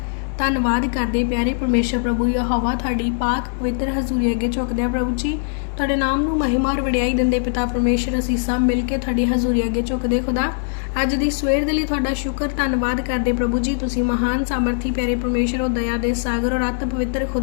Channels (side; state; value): right; silent; 65 dB below the other